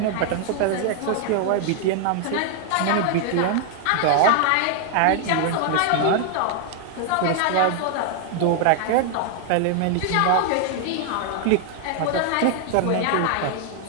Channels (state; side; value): different; both; correlation 0.00